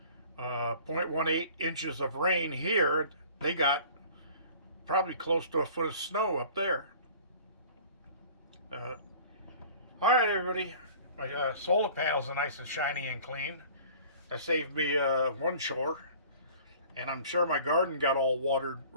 0.18 inches of rain here. They got probably close to a foot of snow up there. All right, everybody. My solar panels are nice and shiny and clean. That saved me one chore. And I'm sure my garden got all watered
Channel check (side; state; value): both; inverted; correlation -0.47